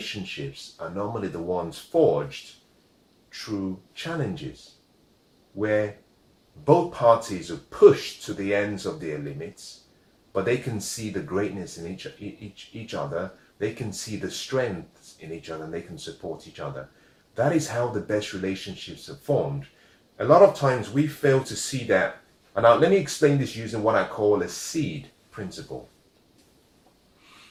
are normally the ones forged through challenges, where both parties are pushed to the ends of their limits, but they can see the greatness in each other. They can see the strengths in each other, and they can support each other. That is how the best relationships are formed. A lot of times we fail to see that. And now let me explain this using what I call a seed principle.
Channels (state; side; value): identical; both; correlation 1.00